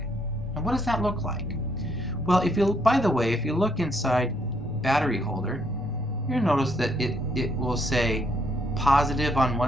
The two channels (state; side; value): normal; both; correlation 0.71